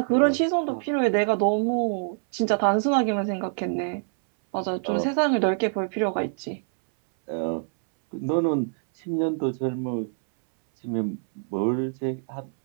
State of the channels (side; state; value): left; silent; 62 dB below the other